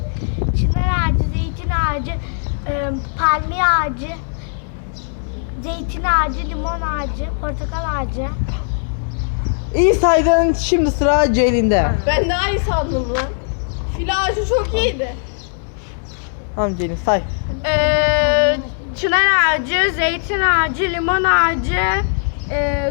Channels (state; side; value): silent; right; digital silence